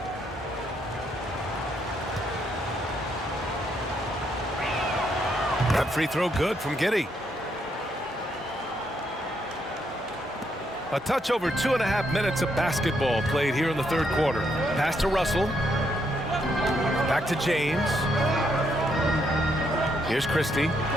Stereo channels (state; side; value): normal; both; correlation 0.76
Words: That free throw good from Giddey. A touch over 2.5 minutes of basketball played here in the third quarter. Pass to Russell. Back to James. Here's Christie.